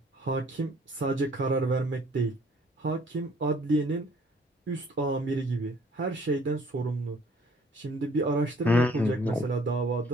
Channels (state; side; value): normal; both; correlation 0.58